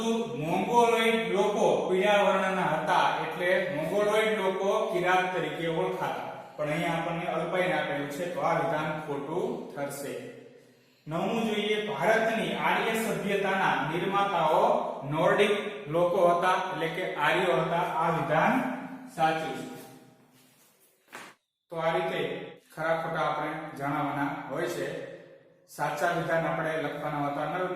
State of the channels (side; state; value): both; identical; correlation 1.00